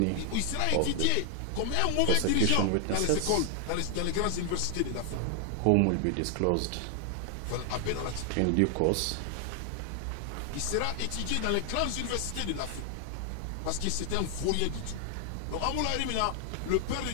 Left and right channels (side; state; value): both; different; correlation 0.00